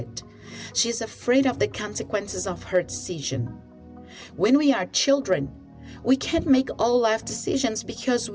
She is afraid of the consequences of her decision. When we are children, we can't make all life decisions because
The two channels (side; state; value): both; identical; correlation 1.00